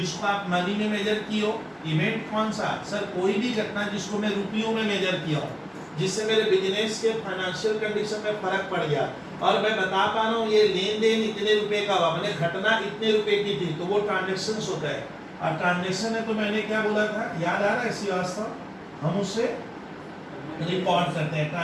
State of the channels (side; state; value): both; identical; correlation 1.00